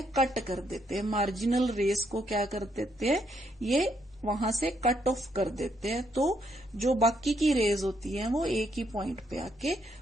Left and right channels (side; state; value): both; normal; correlation 0.74